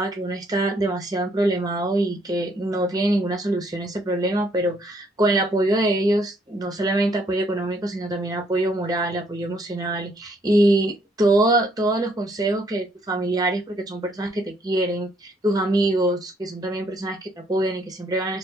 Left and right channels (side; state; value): both; normal; correlation 0.68